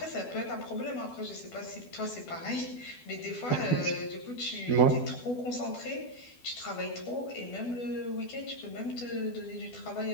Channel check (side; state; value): right; late; 12 ms